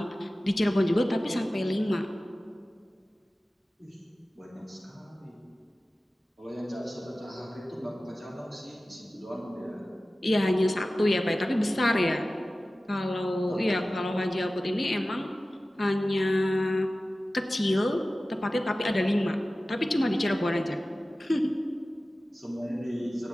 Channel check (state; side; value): normal; both; correlation 0.96